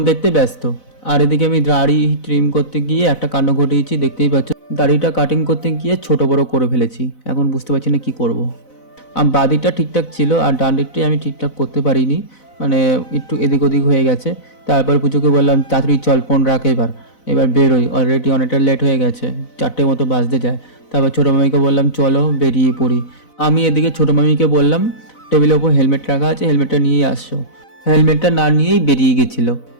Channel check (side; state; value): right; late; 4.0 ms